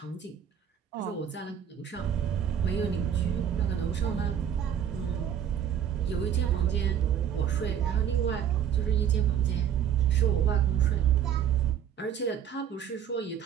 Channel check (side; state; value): left; quieter; 9.0 dB